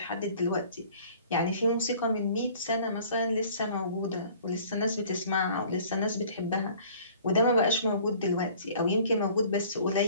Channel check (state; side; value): inverted; both; correlation -0.51